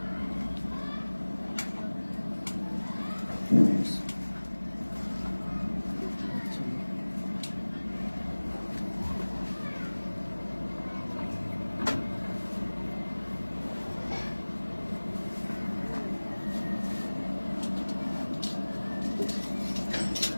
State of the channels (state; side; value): inverted; both; correlation -1.00